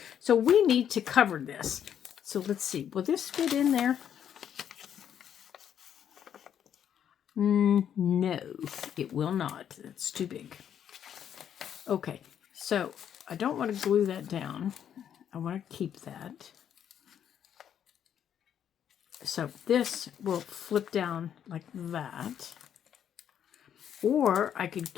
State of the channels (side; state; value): right; quieter; 9.2 dB